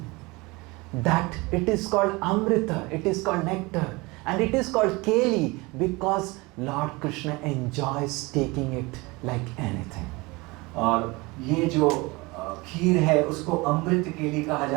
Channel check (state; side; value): quieter; left; 24.2 dB